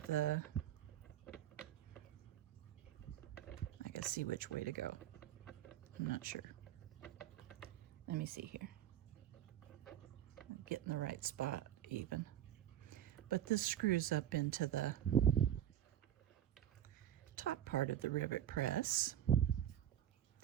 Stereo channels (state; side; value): quieter; left; 11.1 dB